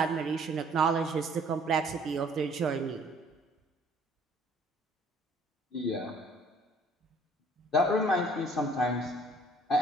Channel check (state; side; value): normal; both; correlation 0.57